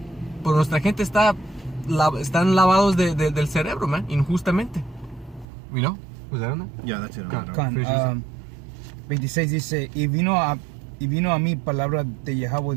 Pero nuestra gente están lavados del cerebro, man, injustamente. ¿Y no? ¿Was that enough? Yeah, that's it. 26 dice, y vino a mí palabra de Yahweh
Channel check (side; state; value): left; drops out; at 5.5 s